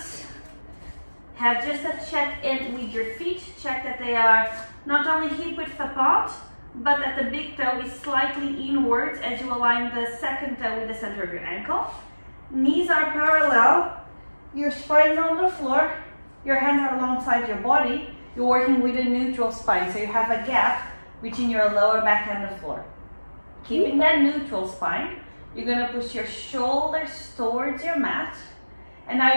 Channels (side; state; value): both; inverted; correlation -1.00